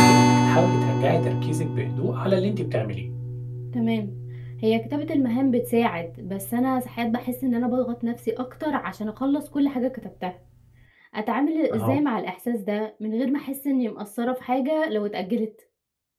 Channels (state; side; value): identical; both; correlation 1.00